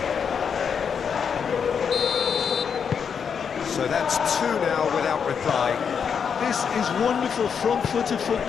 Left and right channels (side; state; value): right; quieter; 6.8 dB